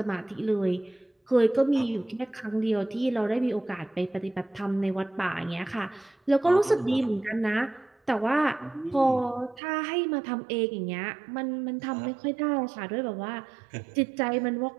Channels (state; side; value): drops out; left; at 9.6 s